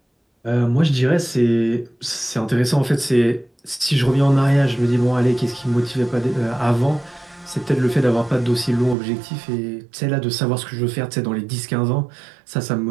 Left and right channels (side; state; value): left; drops out; at 9.0 s